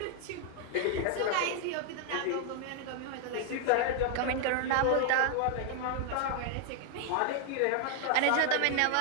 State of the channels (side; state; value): both; different; correlation 0.00